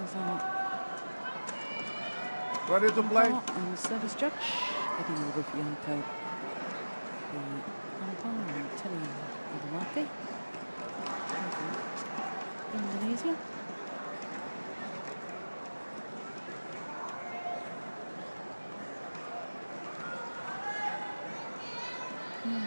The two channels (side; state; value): both; inverted; correlation -1.00